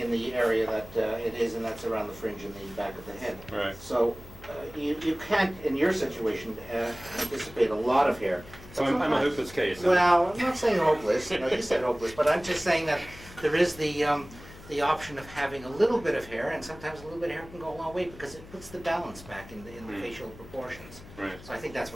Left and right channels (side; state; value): left; noise; hum, 18 dB below the sound